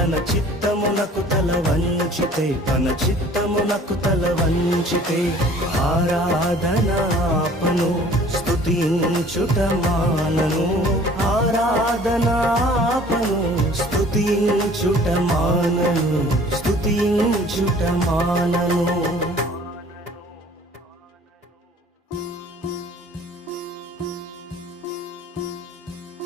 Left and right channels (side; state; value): both; normal; correlation 0.51